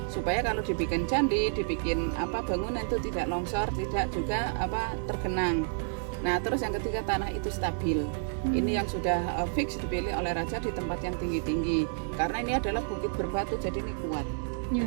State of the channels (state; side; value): silent; left; digital silence